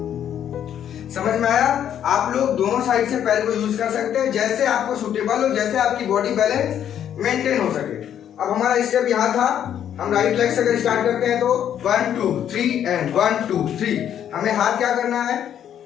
समझ में आया? आप लोग दोनों साइड से पैर को यूज कर सकते हैं, जैसे आपको सूटेबल हो, जैसे आपकी बॉडी बैलेंस मेंटेन हो सके। अब हमारा स्टेप यहाँ था, हम राइट लेग से अगर स्टार्ट करते हैं तो 1 2 3 and 1 2 3। हमें हाथ क्या करना है,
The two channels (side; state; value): right; quieter; 9.8 dB